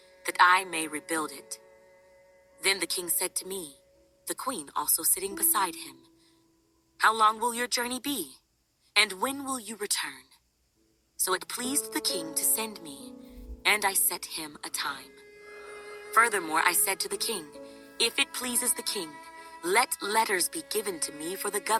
that I may rebuild it." Then the king said to me, the queen also sitting beside him, "How long will your journey be? And when will you return?" So it pleased the king to send me, and I set him a time. Furthermore, I said to the king, "If it pleases the king, let letters be given to me for the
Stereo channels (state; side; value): identical; both; correlation 1.00